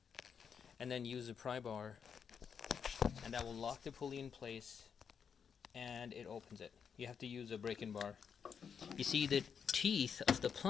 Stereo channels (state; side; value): quieter; right; 6.9 dB